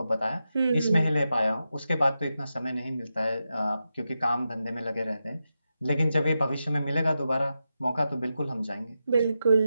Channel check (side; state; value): both; inverted; correlation -0.89